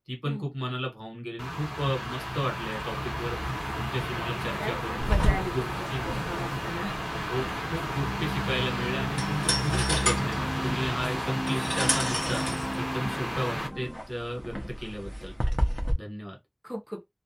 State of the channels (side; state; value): both; identical; correlation 1.00